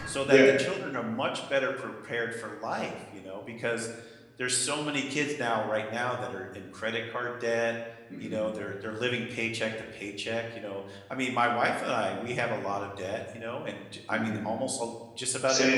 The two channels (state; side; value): identical; both; correlation 1.00